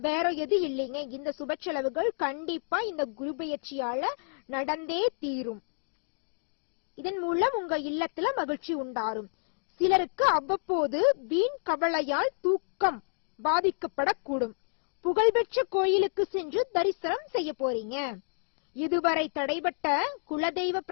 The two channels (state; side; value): silent; right; digital silence